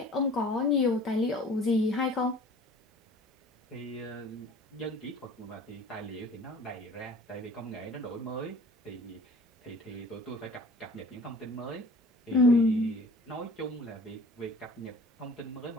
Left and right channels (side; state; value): both; normal; correlation 0.47